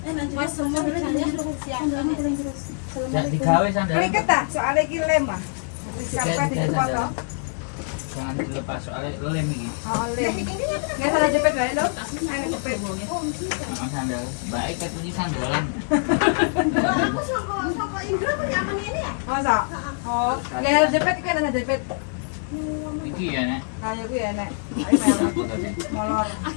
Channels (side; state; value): right; silent; 62 dB below the other